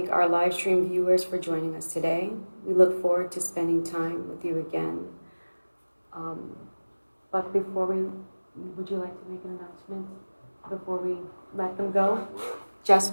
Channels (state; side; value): inverted; both; correlation -1.00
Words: our live stream viewers for joining us today. We look forward to spending time with you again. But before would you like to make an announcement before we let them go? Just